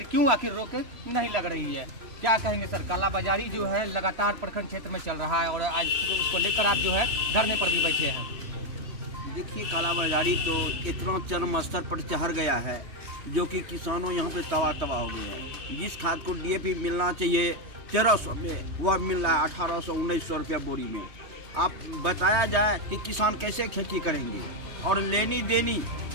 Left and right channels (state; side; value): late; left; 3.2 ms